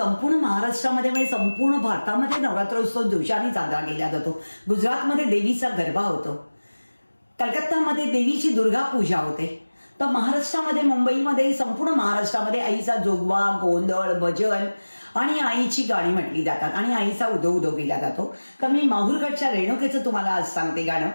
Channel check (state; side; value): inverted; both; correlation -1.00